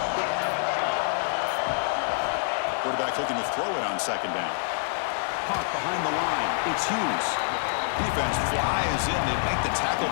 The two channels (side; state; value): right; silent; digital silence